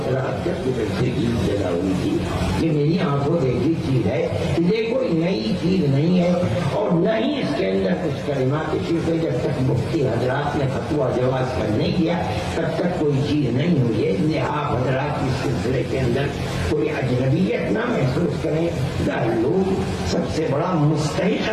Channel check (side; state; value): both; identical; correlation 1.00